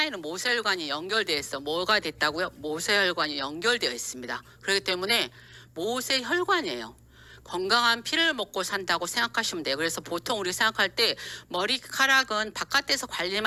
모세혈관이 연결되어 있어. 뭐가 됐다고요? 모세혈관이 연결되어 있습니다. 그렇기 때문에 모세혈관이에요. 건강한 피를 먹고 산다고 생각하시면 돼요. 그래서 보통 우리 생각할 때 머리카락은 바깥에서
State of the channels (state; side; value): identical; both; correlation 1.00